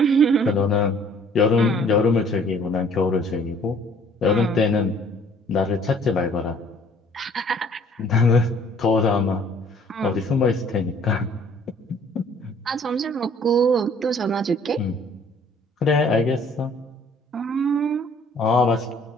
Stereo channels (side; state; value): both; normal; correlation 0.56